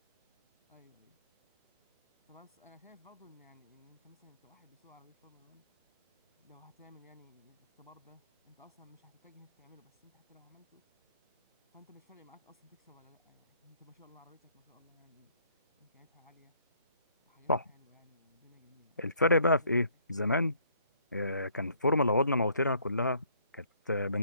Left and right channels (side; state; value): both; inverted; correlation -0.63